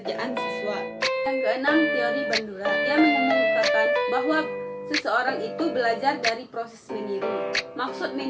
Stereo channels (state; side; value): identical; both; correlation 1.00